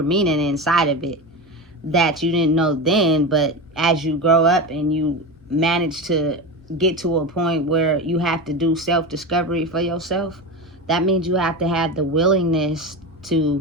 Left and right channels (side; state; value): both; normal; correlation 0.22